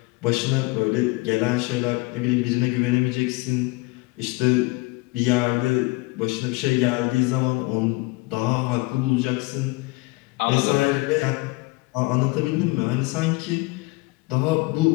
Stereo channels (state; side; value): quieter; right; 24.3 dB